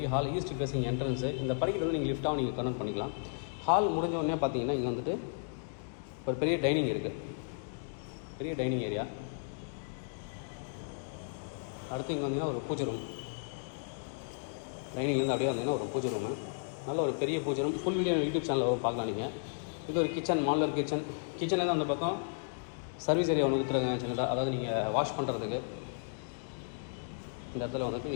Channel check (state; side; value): silent; right; digital silence